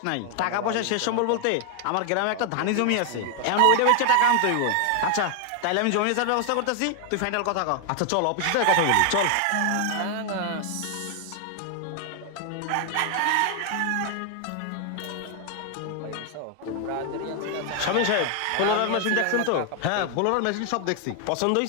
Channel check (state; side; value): different; both; correlation 0.00